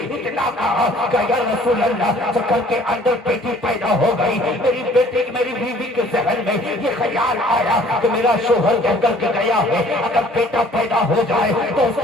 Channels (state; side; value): normal; both; correlation 0.55